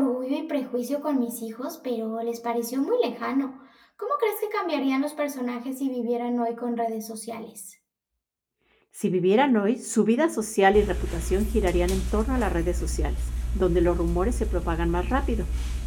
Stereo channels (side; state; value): both; identical; correlation 1.00